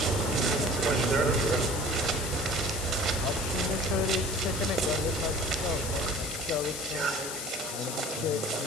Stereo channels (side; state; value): left; noise; hiss, 6 dB below the sound